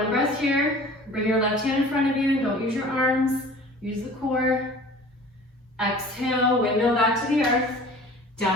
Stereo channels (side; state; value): both; normal; correlation 0.45